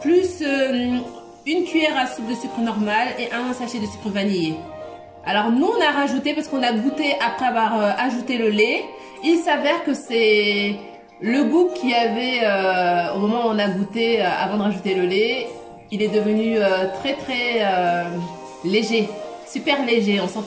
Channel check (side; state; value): both; identical; correlation 1.00